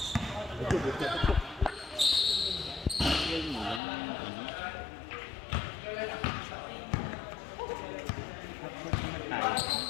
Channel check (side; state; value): right; drops out; at 3.8 s